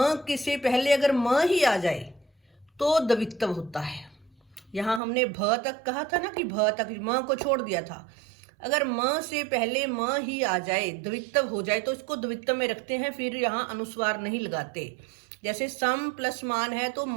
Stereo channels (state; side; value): drops out; left; at 5.0 s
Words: के से पहले अगर म ही आ जाए तो द्वित्व होता है। यहाँ हमने भ तक कहा था ना, कि भ तक म को छोड़ दिया था। अगर म से पहले म ही आ जाए, द्वित्व हो जाए, तो इसको द्वित्व में रखते हैं, फिर यहाँ अनुस्वार नहीं लगाते। जैसे सम प्लस मान है तो